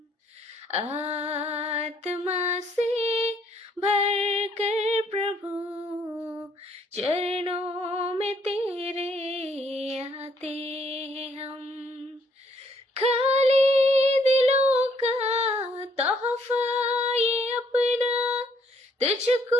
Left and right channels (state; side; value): normal; both; correlation 0.67